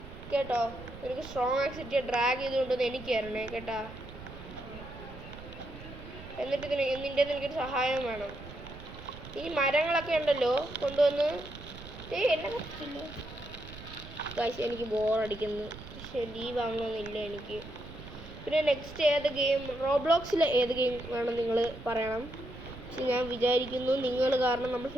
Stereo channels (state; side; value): noise; right; rumble, 14 dB below the sound